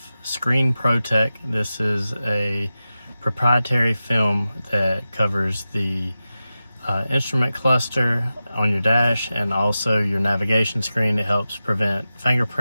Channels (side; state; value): both; inverted; correlation -0.93